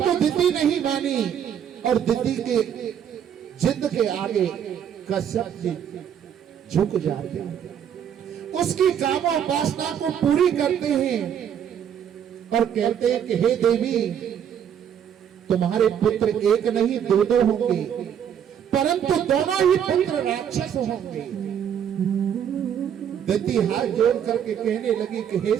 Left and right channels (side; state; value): left; quieter; 8.9 dB